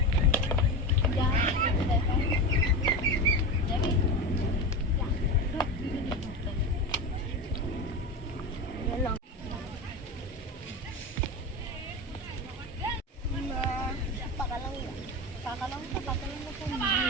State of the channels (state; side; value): normal; both; correlation 0.21